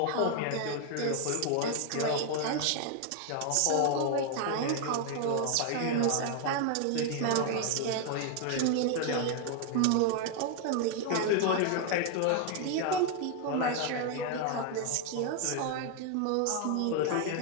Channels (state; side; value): different; both; correlation 0.00